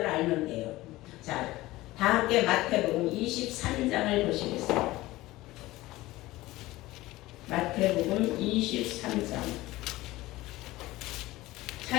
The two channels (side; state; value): right; quieter; 18.2 dB